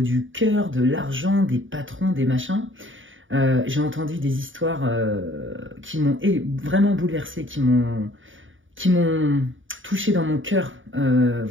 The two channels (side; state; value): left; late; 0.57 ms